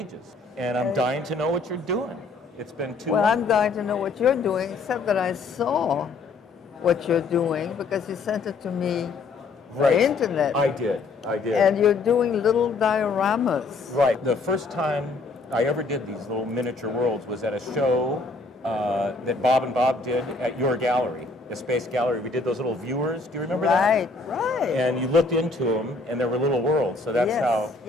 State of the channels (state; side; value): quieter; right; 3.8 dB